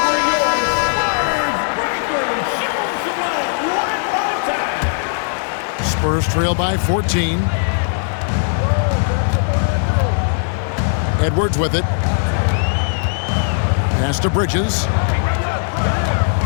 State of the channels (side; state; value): right; silent; digital silence